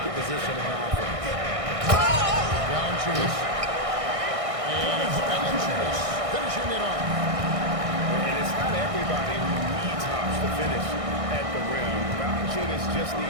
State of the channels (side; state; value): left; late; 1.6 ms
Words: on offense. Valanciunas. And it's Valanciunas finishing it off. And it's not everybody who needs hops to finish at the rim. Valanciunas just